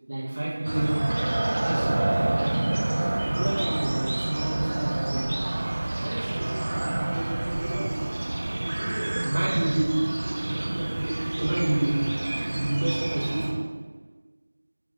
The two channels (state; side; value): inverted; both; correlation -1.00